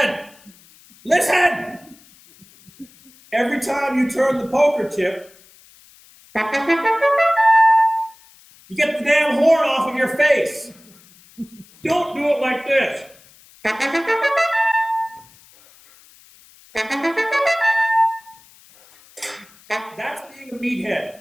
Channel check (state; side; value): noise; left; hiss, 26 dB below the sound